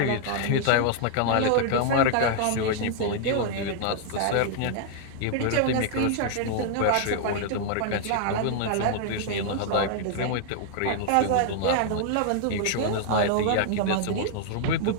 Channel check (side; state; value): both; different; correlation -0.01